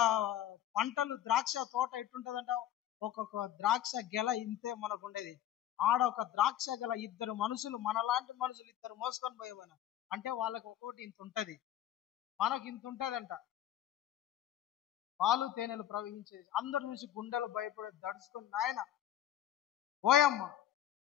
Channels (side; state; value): right; quieter; 11.8 dB